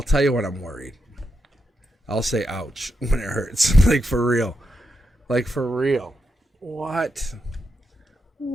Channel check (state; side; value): normal; both; correlation 0.84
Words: tell you when I'm worried. I'll say ouch when it hurts. Like, for real. Like, for real. What?